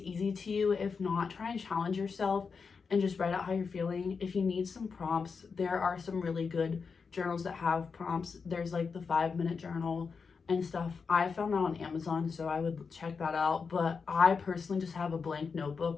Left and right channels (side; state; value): right; quieter; 5.3 dB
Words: to you. If not, try and challenge yourself and just write out how you're feeling. If you need some prompts, there are some really good journals that have prompts. There's like the 5-minute journal and stuff. I found that on Amazon, so I would check that out. But I personally just have a blank